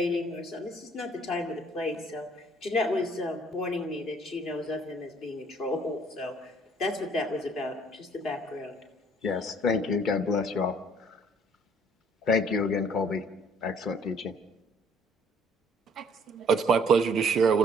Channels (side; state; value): both; normal; correlation 0.59